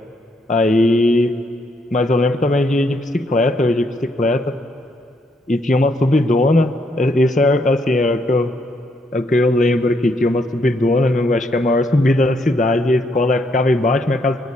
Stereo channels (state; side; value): normal; both; correlation 0.74